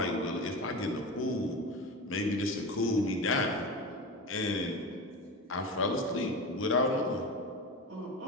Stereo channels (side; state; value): both; normal; correlation 0.26